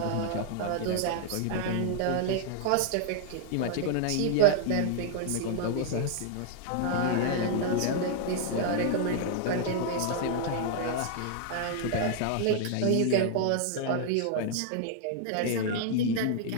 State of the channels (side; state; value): both; different; correlation -0.01